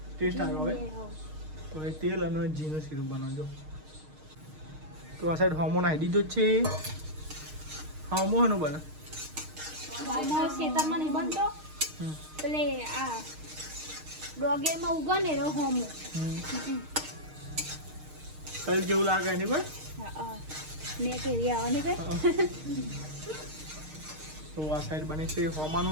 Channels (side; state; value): left; late; 6.5 ms